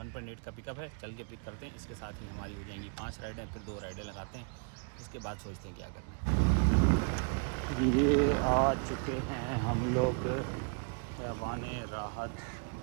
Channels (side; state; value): left; quieter; 39.5 dB